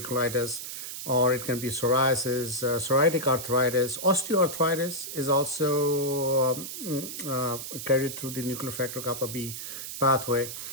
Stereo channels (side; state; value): right; noise; hiss, 8 dB below the sound